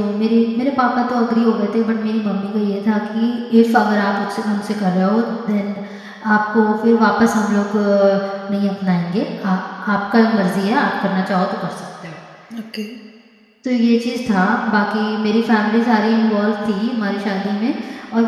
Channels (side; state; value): both; identical; correlation 1.00